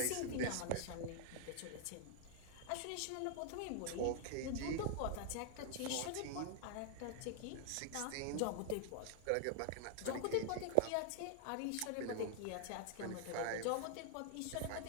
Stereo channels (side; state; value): both; different; correlation 0.00